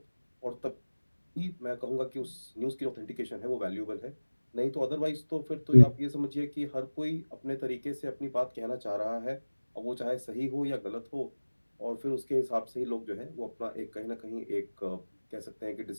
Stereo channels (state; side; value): inverted; both; correlation -1.00